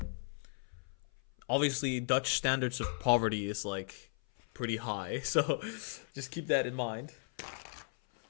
Obviously, Dutch standards of poverty is like pretty high, so just keep that in mind.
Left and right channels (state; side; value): silent; right; 54 dB below the other